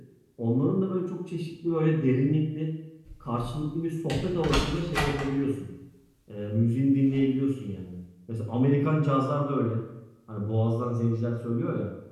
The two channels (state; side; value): identical; both; correlation 1.00